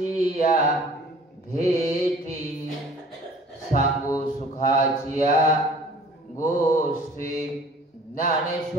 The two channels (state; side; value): normal; both; correlation 0.50